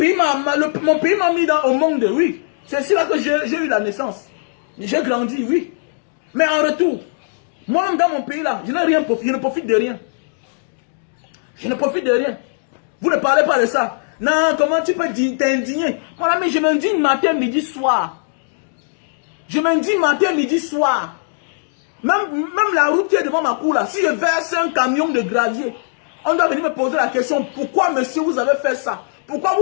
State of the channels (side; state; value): right; silent; digital silence